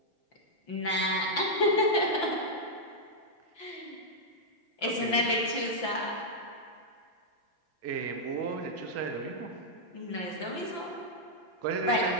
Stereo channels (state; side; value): late; right; 5.8 ms